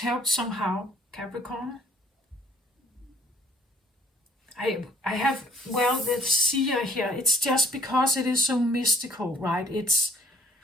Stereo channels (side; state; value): both; normal; correlation 0.59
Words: somehow, Capricorn. I have, well, the seer here, it's just because it is so mystical, right?